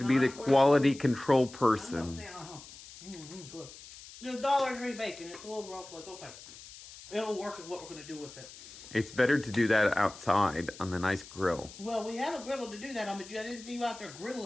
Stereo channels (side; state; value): left; noise; hiss, 17 dB below the sound